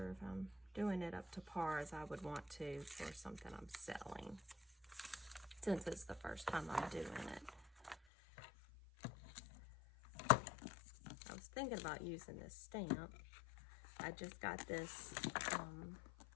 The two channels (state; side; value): drops out; right; at 8.0 s